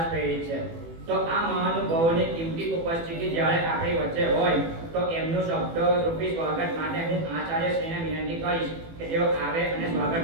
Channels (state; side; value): late; left; 18 ms